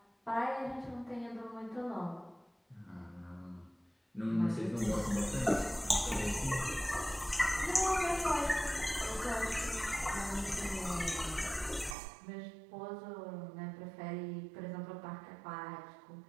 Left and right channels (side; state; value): left; drops out; at 12.0 s